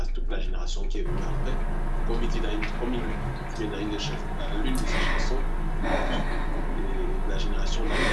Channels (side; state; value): both; identical; correlation 1.00